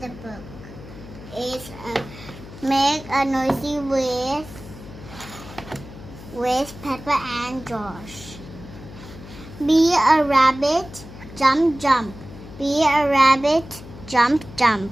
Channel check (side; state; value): left; noise; hum, 16 dB below the sound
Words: the book. It's Make a Noisy with Peppa and George. Be a rabbit, jump, jump. Be a rabbit, jump, jump.